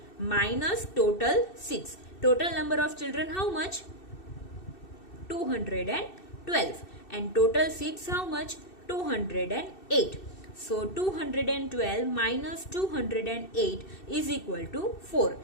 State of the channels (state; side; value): late; right; 2.6 ms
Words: minus total seats. Total number of children how much? 212 and total seats how much? 208. So 212 minus 208 is equal to 4.